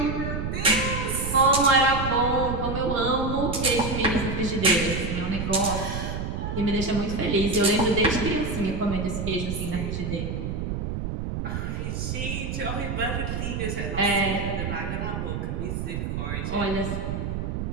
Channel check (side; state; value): right; noise; rumble, 3 dB below the sound